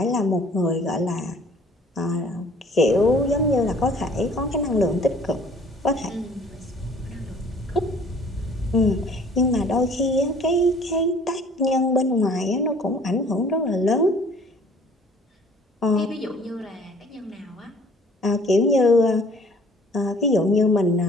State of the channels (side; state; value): both; normal; correlation 0.54